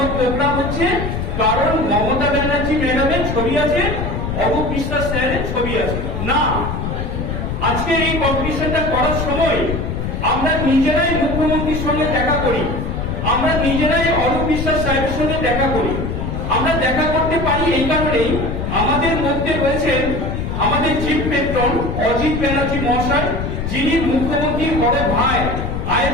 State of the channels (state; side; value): noise; left; rumble, 3 dB below the sound